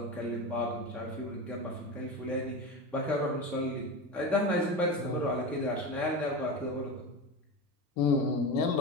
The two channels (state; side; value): normal; both; correlation 0.24